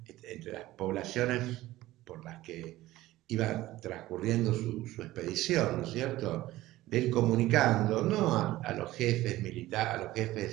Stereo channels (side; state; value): left; quieter; 16.6 dB